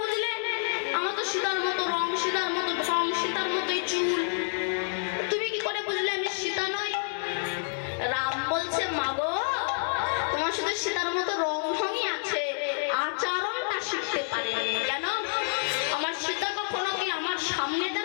আমার তো সীতার মতো রং, সীতার মতো ঢং, সীতার মতোই চুল, তুমি কি করে বুঝলে আমি সীতা নই? রাম বলছে মাগো তোমার সাথে সীতার মতো রং ঢংই আছে, আচরণটা শিখতে পারে। কেন? আমার সীতা কখনো কি আমার সামনে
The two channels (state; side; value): silent; right; digital silence